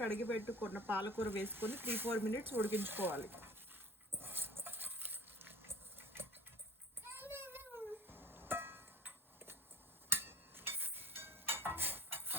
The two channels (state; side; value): normal; both; correlation 0.48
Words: పెట్టుకున్న పాలకూర వేసుకొని 3-4 మినిట్స్ ఉడికించుకోవాలి.